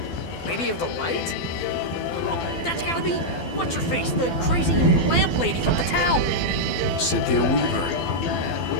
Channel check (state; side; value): late; right; 12 ms